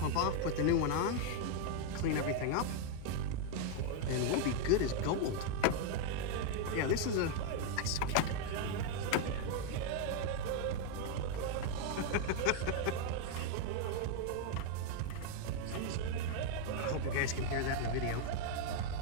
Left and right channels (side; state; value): both; different; correlation 0.01